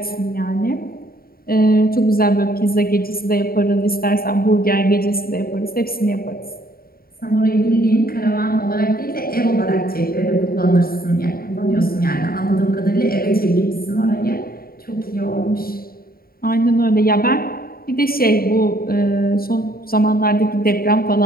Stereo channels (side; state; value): right; late; 0.43 ms